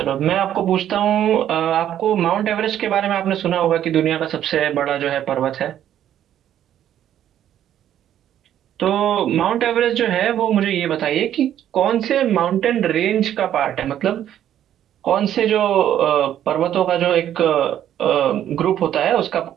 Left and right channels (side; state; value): left; quieter; 11.0 dB